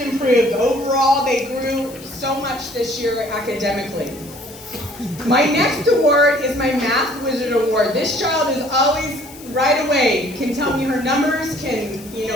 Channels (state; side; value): noise; left; hiss, 19 dB below the sound